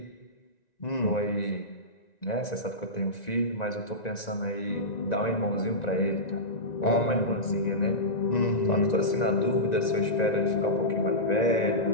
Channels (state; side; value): late; right; 1.9 ms